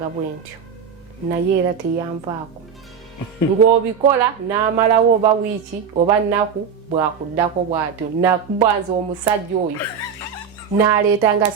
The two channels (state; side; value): quieter; left; 6.8 dB